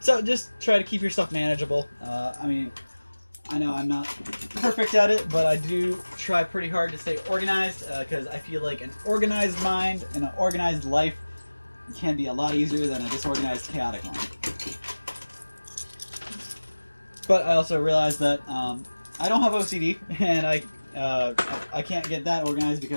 just try to keep your stuff manageable. I mean, I know I'm not perfect at it, but I do try pretty hard to stay organized, because I feel like an organized mind and an organized life can be a lot easier than a disorganized, chaotic one. But I also realize that I don't have OCD, and I can't get that organized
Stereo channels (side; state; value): both; inverted; correlation -1.00